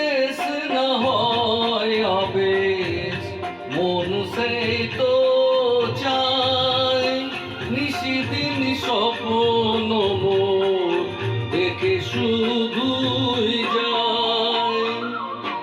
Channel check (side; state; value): both; identical; correlation 1.00